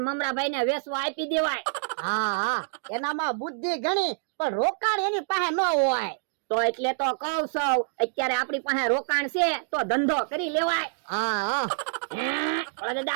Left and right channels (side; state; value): left; silent; digital silence